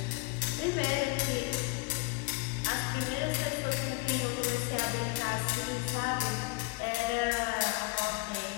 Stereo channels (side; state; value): right; quieter; 23.9 dB